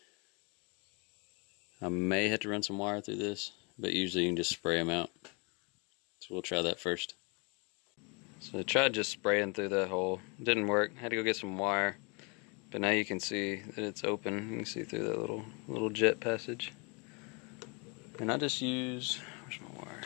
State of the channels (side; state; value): right; quieter; 32.1 dB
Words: I may have to run some wire through this, but usually you can just spray them out. So we'll try that first. So I tried just spraying through that hole. It didn't work. I had to go get some wire. But now you can see that it's open. You can see through that little jet passage. And I just use, where's my wire?